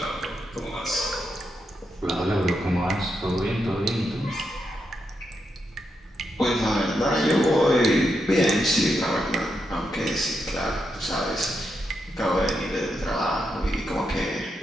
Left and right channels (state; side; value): normal; both; correlation 0.83